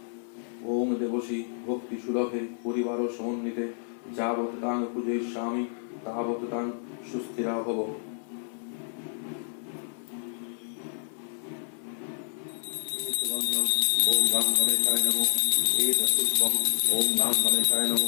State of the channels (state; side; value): silent; right; 59 dB below the other